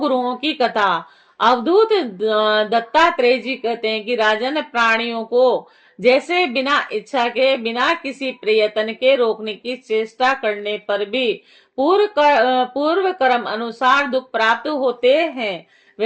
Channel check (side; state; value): both; identical; correlation 1.00